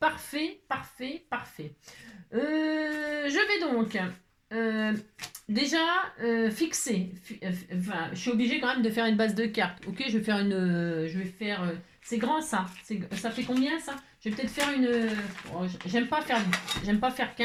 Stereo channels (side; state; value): both; identical; correlation 1.00